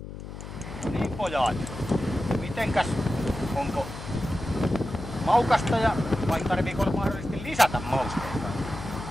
Niin pojat, mitenkäs, onko maukasta ja vai tarviiko mahdollisesti lisätä mausteita?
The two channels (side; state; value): left; noise; hum, 11 dB below the sound